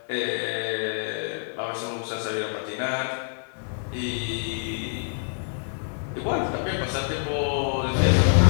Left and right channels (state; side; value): silent; right; 61 dB below the other